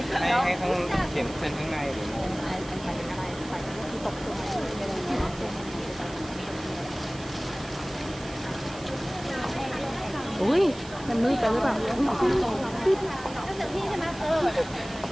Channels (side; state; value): right; noise; hiss, 16 dB below the sound